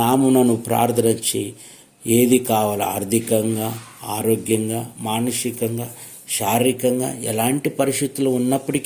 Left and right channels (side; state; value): both; identical; correlation 1.00